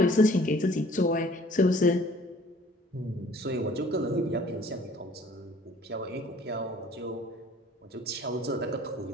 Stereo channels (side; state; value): both; normal; correlation 0.53